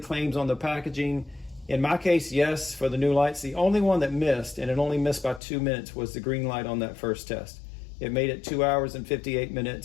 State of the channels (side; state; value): right; drops out; at 5.4 s